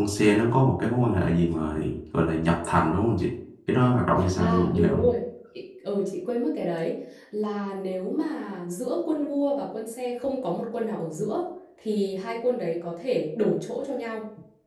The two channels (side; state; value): both; identical; correlation 1.00